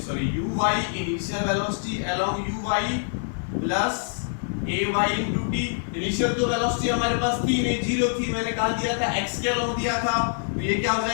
velocity along uy plus ay into t। Initial तो वेलोसिटी हमारे पास थी नहीं, 0 थी, मैंने कहा दिया था x के अलोंग दिया था, तो ये क्या हो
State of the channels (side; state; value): right; silent; digital silence